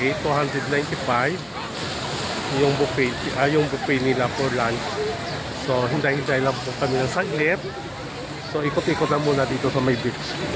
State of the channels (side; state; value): both; identical; correlation 1.00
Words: 295. Yung buffet nila for lunch. So hintay-hintay lang po kami ng saglit. So ikot-ikot na muna dito sa may beach.